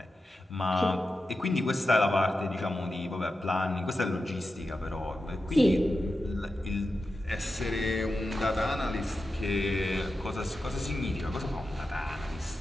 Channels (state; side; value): normal; both; correlation 0.91